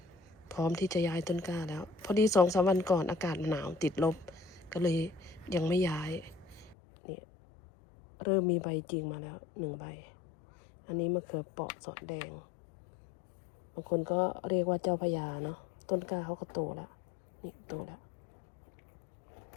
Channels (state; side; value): drops out; right; at 6.8 s